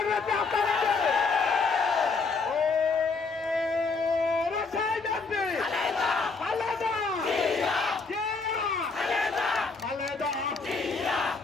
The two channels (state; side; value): quieter; right; 4.3 dB